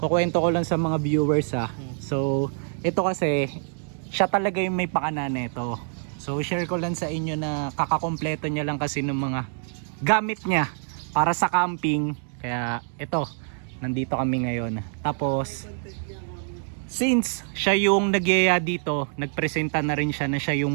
ko lang sa mga viewers So, ito kasi, siya talaga yung may pakana nito. So, share ko lang sa inyo na kakakompleto niya lang kasi ng mga gamit niya para sa camping. Kaya, ito, nandito kami ngayon. Tapos, since siya yung nagyaya dito, nagpresenta na rin siya na siya yung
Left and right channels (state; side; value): silent; left; 56 dB below the other